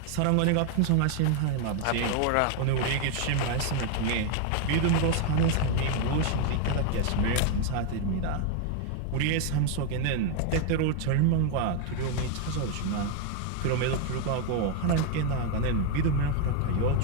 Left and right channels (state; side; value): different; both; correlation 0.01